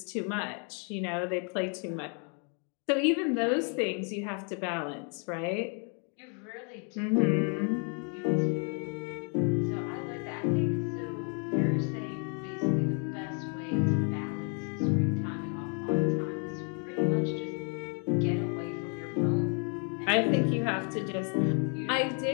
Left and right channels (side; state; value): right; quieter; 39.6 dB